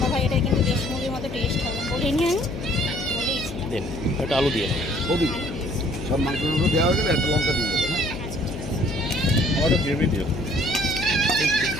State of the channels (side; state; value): left; noise; hum, 9 dB below the sound